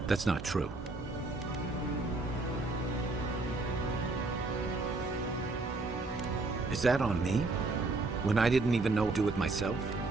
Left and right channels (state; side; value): quieter; left; 3.3 dB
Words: not true. Is that on me? When I didn't even know what to do with myself?